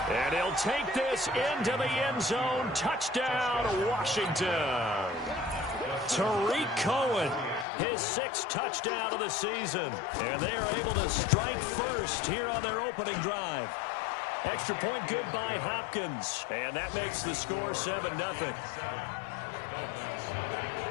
And he'll take this into the end zone. Touchdown, Washington. Tariq Cohen, his 6th touchdown of the season. And they are able to strike first here on their opening drive. Extra point good by Hopkins. And that makes the score 7-0.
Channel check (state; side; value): drops out; right; at 7.7 s